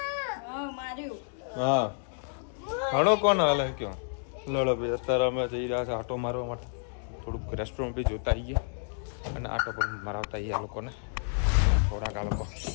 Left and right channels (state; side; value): silent; right; digital silence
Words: હા, ઘણો કોણ હાલે કયો. લડો ભાઈ, અત્યારે અમે જઈ રહ્યા છે આટો મારવા માટે. થોડુંક રેસ્ટોરન્ટ બી જોતા આવીએ અને આટો પણ મરાવતા આવીએ. આ લોકોને થોડાક આ લોકો